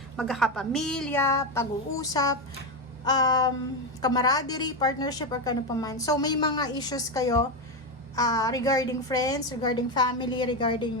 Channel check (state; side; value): normal; both; correlation 0.11